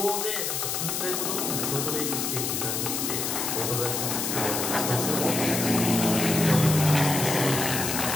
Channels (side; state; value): left; noise; hiss, 1 dB below the sound